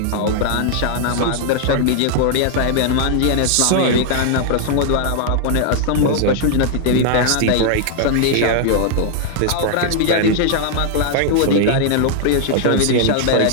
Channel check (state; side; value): different; both; correlation 0.00